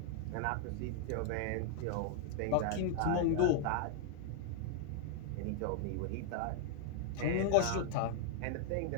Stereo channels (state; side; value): different; both; correlation 0.00